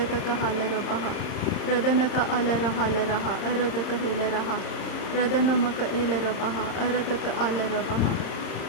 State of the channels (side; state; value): right; late; 30 ms